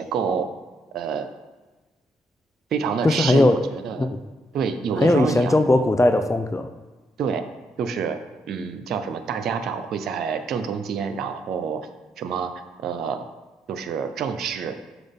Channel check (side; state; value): both; normal; correlation 0.77